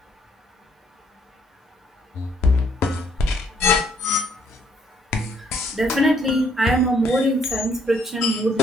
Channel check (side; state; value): both; normal; correlation 0.67